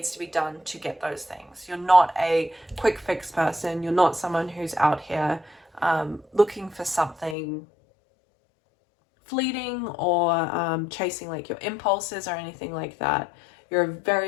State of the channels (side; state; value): right; drops out; at 7.4 s